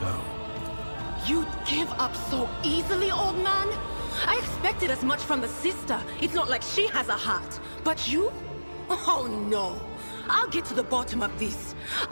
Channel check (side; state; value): both; inverted; correlation -1.00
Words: You'd give up so easily, old man? I expected as much from the sister. It's not like she has a heart. But you? Oh no. I'll get to the bottom of this.